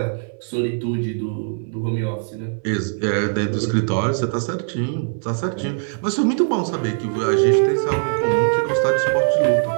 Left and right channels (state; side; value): silent; left; 62 dB below the other